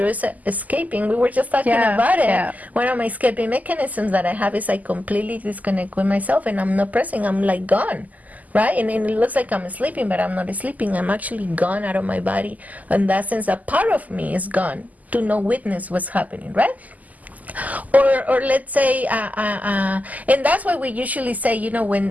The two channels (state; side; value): late; left; 0.078 ms